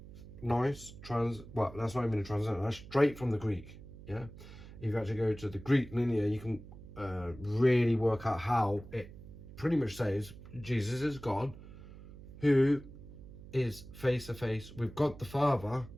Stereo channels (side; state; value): right; noise; hum, 16 dB below the sound